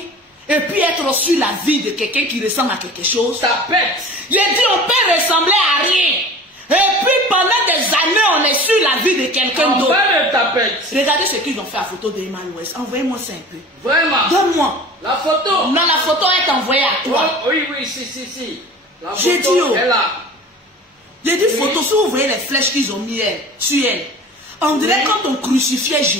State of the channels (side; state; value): both; normal; correlation 0.40